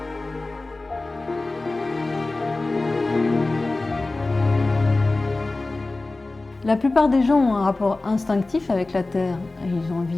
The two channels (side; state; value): right; quieter; 3.2 dB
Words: La plupart des gens ont un rapport instinctif avec la terre. Ils ont envie